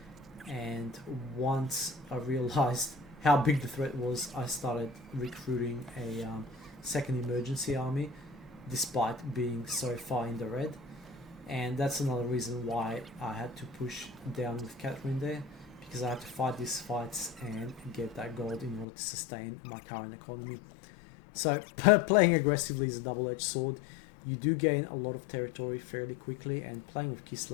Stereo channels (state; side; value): drops out; right; at 18.9 s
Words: and once I realized how big the threat was, I started recruiting a second emergency army, despite being so far in the red. And that's another reason why I had to push down with Catherine there, because I had to fight these fights and get that gold in order to sustain my current economy. So playing aggressively is a double-edged sword. You do gain a lot of territory fairly quickly, and playing with